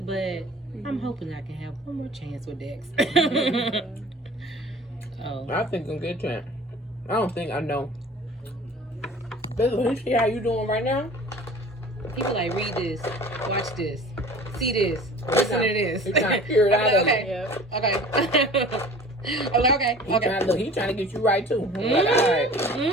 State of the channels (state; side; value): normal; both; correlation 0.44